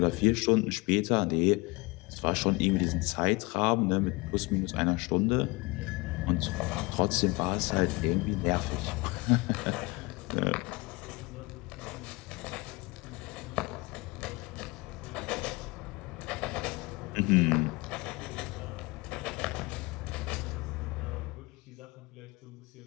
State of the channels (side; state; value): right; quieter; 25.2 dB